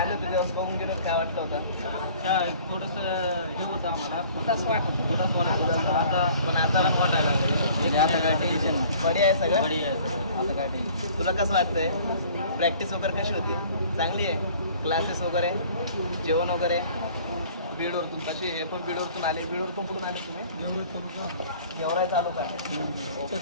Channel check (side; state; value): both; inverted; correlation -0.51